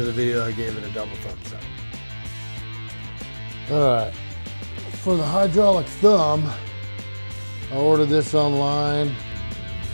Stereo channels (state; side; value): inverted; both; correlation -1.00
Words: the video I gave it a double thumbs up. Alright, for the hydraulic thumb, I ordered this online